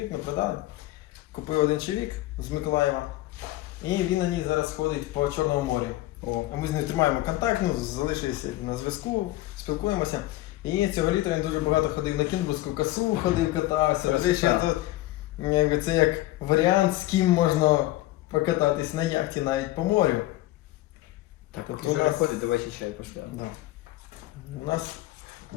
ми продали. Купив один чоловік з Миколаєва. І він на ній зараз ходить по Чорному морю. О, А ми з ним тримаємо контакт, ну, залишилися на зв'язку, спілкуємося. І цього літа він дуже багато ходив на Кінбурзьку косу, ходив, катався. Красота. Ще тут, якби, це як варіант, з ким можна покататись на яхті навіть по морю. так, Тобто поки у Жора нас- ходить, давайте чай поставимо. Да. У нас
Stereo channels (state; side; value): quieter; right; 16.9 dB